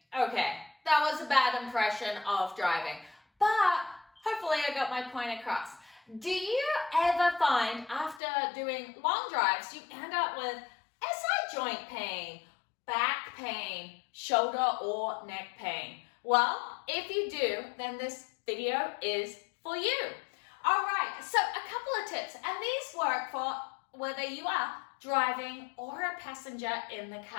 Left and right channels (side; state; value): right; drops out; at 8.2 s